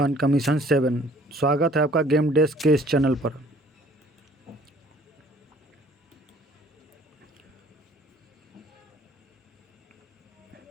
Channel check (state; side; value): normal; both; correlation 0.55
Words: का मिशन 7। स्वागत है आपका गेम डेस्क के इस चैनल पर।